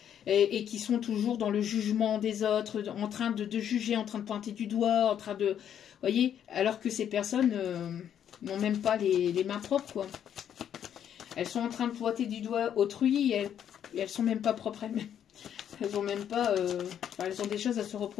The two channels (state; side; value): quieter; right; 9.4 dB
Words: Et qui sont toujours dans le jugement des autres, en train de juger, en train de pointer du doigt, en train de... voyez, alors que ces personnes... n'ont même pas les mains propres, quoi. Elles sont en train de pointer du doigt autrui et elles sont même pas propres elles-mêmes. Elles ont même pas... elles ont des choses à se